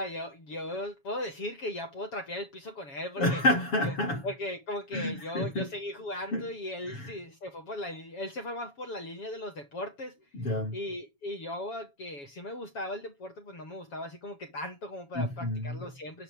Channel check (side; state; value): right; late; 7.1 ms